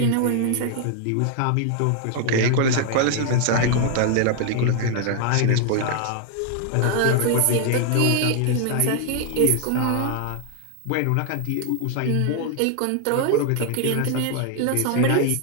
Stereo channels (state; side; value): different; both; correlation 0.00